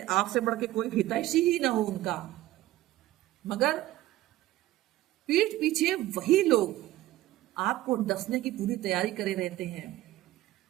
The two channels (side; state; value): left; quieter; 15.8 dB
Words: आपसे बढ़ के कोई हितैषी ही ना हो उनका, मगर पीठ पीछे वही लोग आपको डसने की पूरी तैयारी करे रहते हैं।